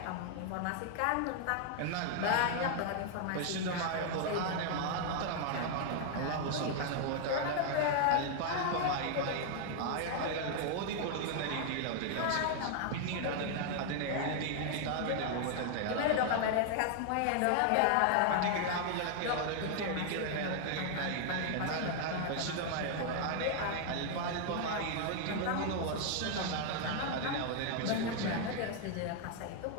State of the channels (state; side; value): different; both; correlation 0.00